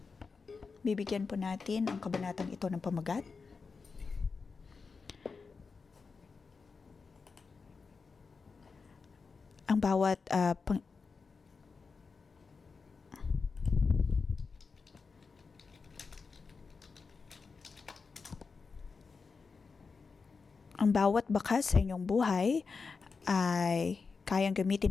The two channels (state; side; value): quieter; right; 4.8 dB